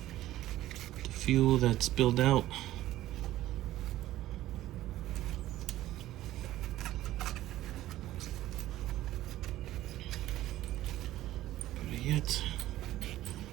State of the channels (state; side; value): quieter; left; 14.7 dB